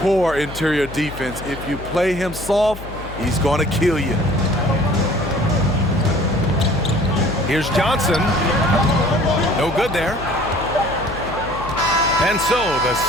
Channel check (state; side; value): noise; left; hum, 13 dB below the sound